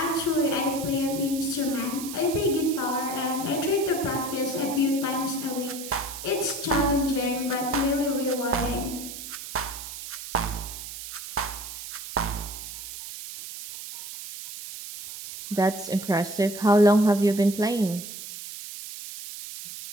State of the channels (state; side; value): noise; right; hiss, 10 dB below the sound